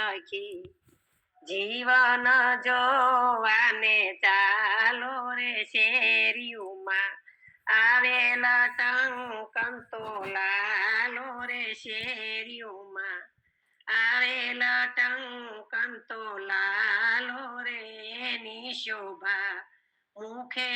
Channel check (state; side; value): identical; both; correlation 1.00